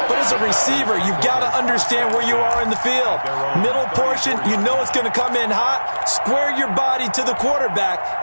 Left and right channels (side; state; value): both; inverted; correlation -1.00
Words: but as a receiver, you've got to understand where you are in the field. Middle portion, you know it's going to come in hot. Square your body to the quarterback